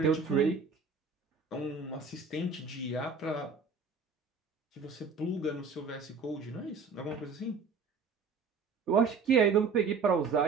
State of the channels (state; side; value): quieter; left; 4.9 dB